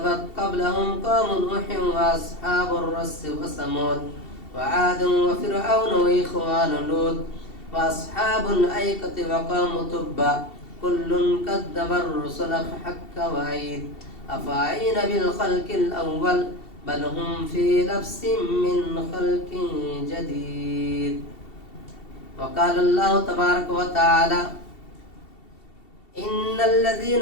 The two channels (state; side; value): late; right; 2.7 ms